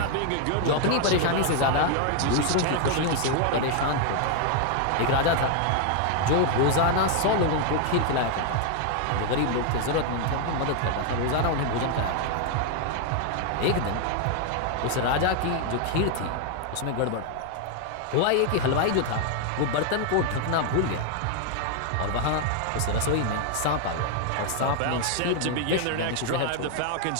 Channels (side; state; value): both; different; correlation 0.00